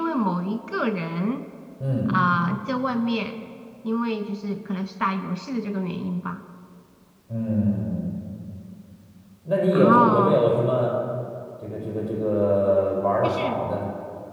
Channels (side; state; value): both; identical; correlation 1.00